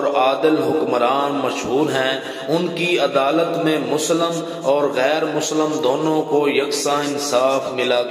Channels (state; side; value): identical; both; correlation 1.00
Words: عادل حکمران مشہور ہیں۔ ان کی عدالت میں مسلم اور غیر مسلم دونوں کو یکساں انصاف ملا